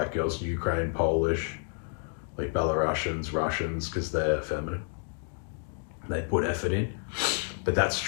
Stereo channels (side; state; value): right; silent; 58 dB below the other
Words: girls Ukraine, Polish, like Belarusians, Russians, because they're feminine. They put effort in. But that's